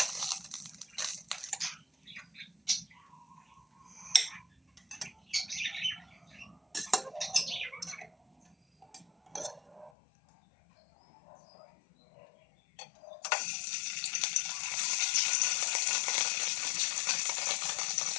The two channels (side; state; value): right; drops out; at 9.9 s